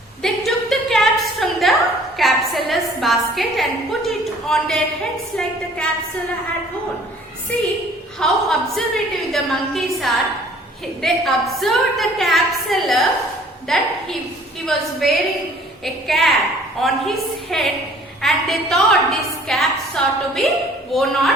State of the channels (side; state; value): both; normal; correlation 0.54